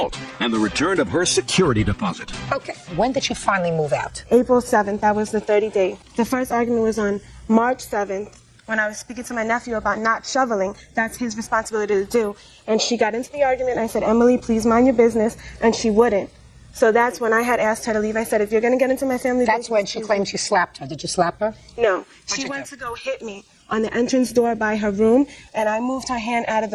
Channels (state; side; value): identical; both; correlation 1.00